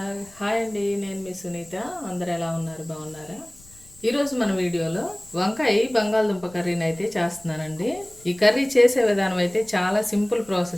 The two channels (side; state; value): left; noise; rumble, 25 dB below the sound